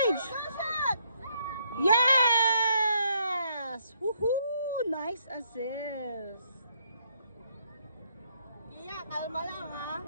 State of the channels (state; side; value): inverted; both; correlation -0.71